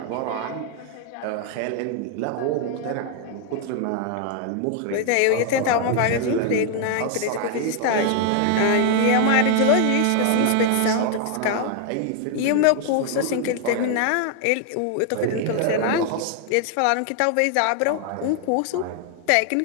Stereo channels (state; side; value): different; both; correlation 0.00